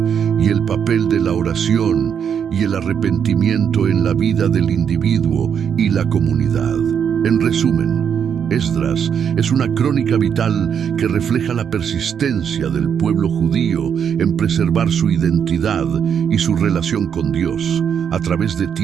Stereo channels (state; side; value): quieter; left; 7.8 dB